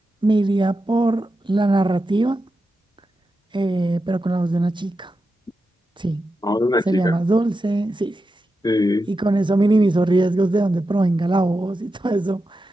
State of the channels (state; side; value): normal; both; correlation 0.89